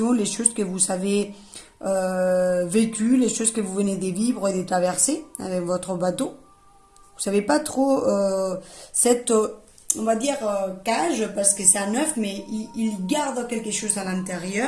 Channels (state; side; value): identical; both; correlation 1.00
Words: les choses que vous avez vécues, les choses que vous venez de vivre et de traverser avec votre bateau. Vous ne savez pas trop cette, on va dire, cage, parce que c'est un œuf, mais il garde quelque chose à